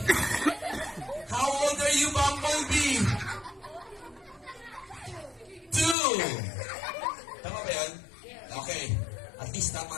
How old are you, Bumblebee? 2. Tama ba yun? Okay. At least tama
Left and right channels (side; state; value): right; drops out; at 6.0 s